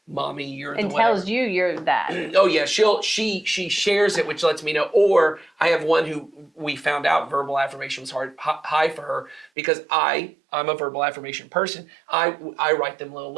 Mommy, you're and the tells you you're that. Oh yeah, she shares it, which lets me know. Or I have one who we found out verbal affirmation was high for her because I'm a verbal affirmation person. I write them little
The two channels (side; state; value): left; drops out; at 9.5 s